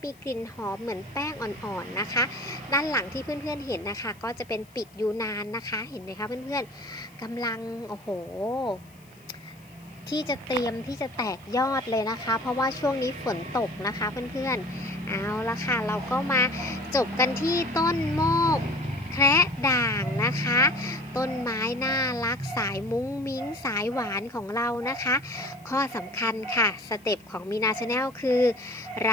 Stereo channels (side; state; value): left; noise; hiss, 28 dB below the sound